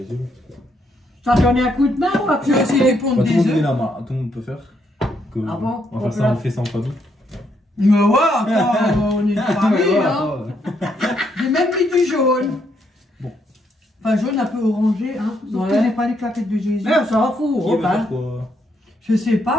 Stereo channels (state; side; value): normal; both; correlation 0.75